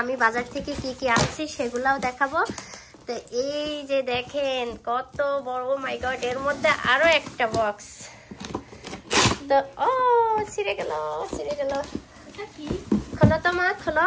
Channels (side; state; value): both; identical; correlation 1.00